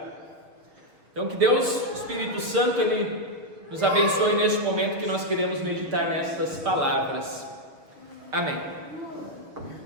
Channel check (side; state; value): left; late; 6.4 ms